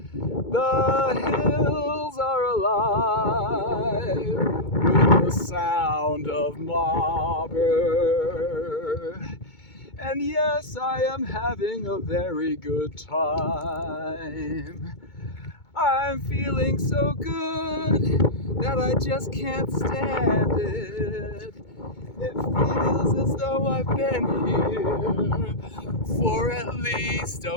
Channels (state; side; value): late; right; 2.2 ms